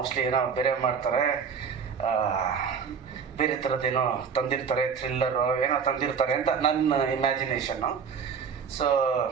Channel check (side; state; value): left; quieter; 6.4 dB